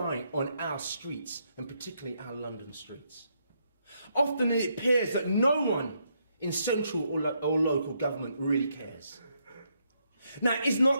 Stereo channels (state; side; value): inverted; both; correlation -0.76